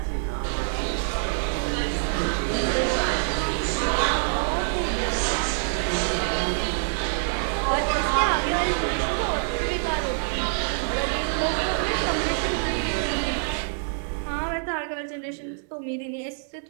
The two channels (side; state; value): left; silent; digital silence